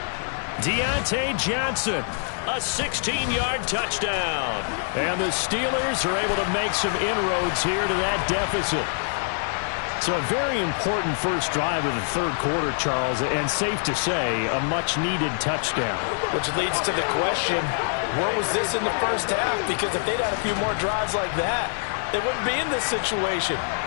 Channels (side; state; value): right; silent; digital silence